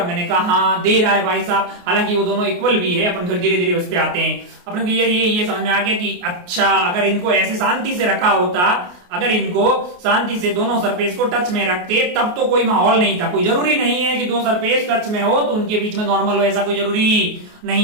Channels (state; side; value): late; left; 28 ms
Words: मैंने कहा हाँ दे रहा है भाई साहब। हालांकि वो दोनों इक्वल भी है, अपन फिर धीरे धीरे उस पे आते हैं। अपने को ये समझ में आ गया कि अच्छा, अगर इनको ऐसे शांति से रखा होता, अगर इनको शांति से दोनों सरफेस को टच में रखते तब तो कोई माहौल नहीं था। कोई जरूरी नहीं है कि दो सरफेस टच में हो तो उनके बीच में नॉर्मल हो, ऐसा कोई जरूरी